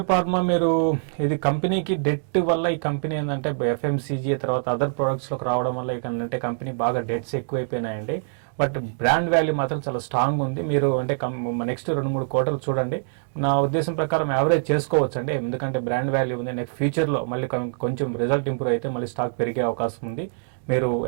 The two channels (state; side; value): silent; left; digital silence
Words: ఫార్మా మీరు ఇది కంపెనీకి డెట్ వల్ల ఈ కంపెనీ ఏంటంటే ఎఫ్ఎంసీజీ తర్వాత అదర్ ప్రొడక్ట్స్ లోకి రావడం వల్ల ఏంటంటే కంపెనీ బాగా డెట్స్ ఎక్కువైపోయినాయండి. బట్ బ్రాండ్ వాల్యూ మాత్రం చాలా స్ట్రాంగ్ ఉంది. మీరు అంటే నెక్స్ట్ 2-3 quarters చూడండి. నా ఉద్దేశం ప్రకారం యావరేజ్ చేసుకోవచ్చు అండి, ఎందుకంటే బ్రాండ్ వాల్యూ ఉంది. నెక్స్ట్ ఫ్యూచర్ లో మళ్ళీ కొంచెం రిజల్ట్ ఇంప్రూవ్ అయితే మళ్ళీ స్టాక్ పెరిగే అవకాశం ఉంది. మీరు